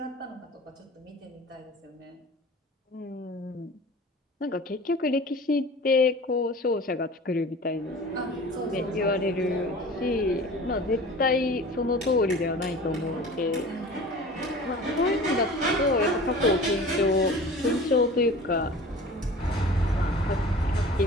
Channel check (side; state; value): both; normal; correlation 0.40